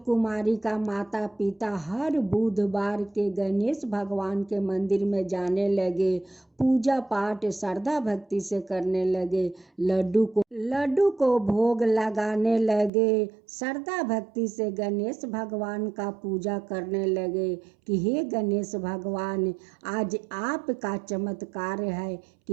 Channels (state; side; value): drops out; left; at 12.9 s